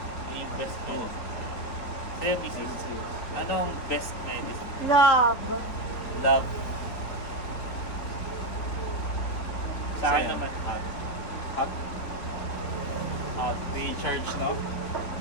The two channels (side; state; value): right; late; 4.2 ms